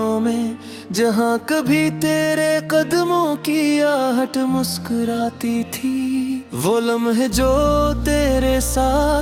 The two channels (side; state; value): both; identical; correlation 1.00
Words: में, जहाँ कभी तेरे कदमों की आहट मुस्कुराती थी। वो लम्हे जो तेरे